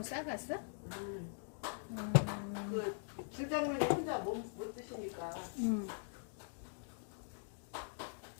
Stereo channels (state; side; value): silent; right; digital silence